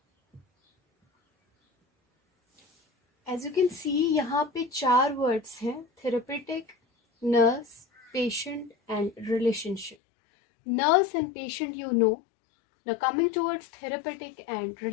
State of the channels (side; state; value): right; drops out; at 10.0 s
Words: As you can see, यहाँ पे 4 words हैं: therapeutic, nurse, patient and relationship. Nurse and patient you know. Now coming towards therapeutic and